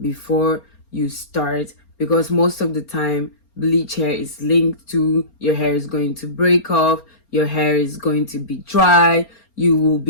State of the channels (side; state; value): right; late; 4.3 ms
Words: you start, because most of the time bleach hair is linked to your hair is going to break off, your hair is going to be dry, you will